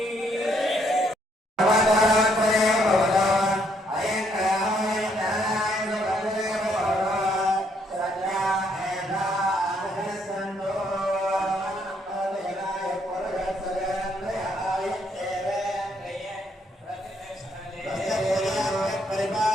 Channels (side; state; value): both; normal; correlation 0.71